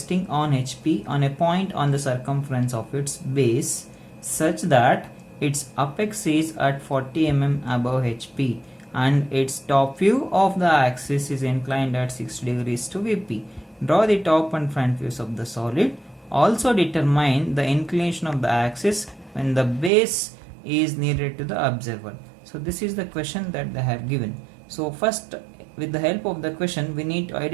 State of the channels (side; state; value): left; drops out; at 19.9 s